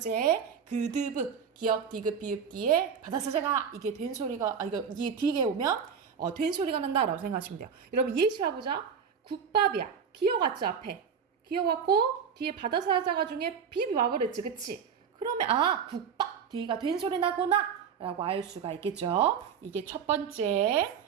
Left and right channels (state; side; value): quieter; left; 7.0 dB